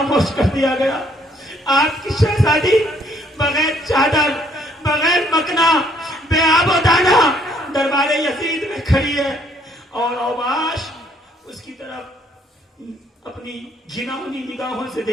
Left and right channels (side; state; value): both; normal; correlation 0.66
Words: کر دیا گیا، آپ کی شہزادی بغیر چادر بغیر مکنا بے آب و دانا دربار یزید میں کھڑی ہے، اور اوباش اس کی طرف اپنی گھناؤنی نگاہوں سے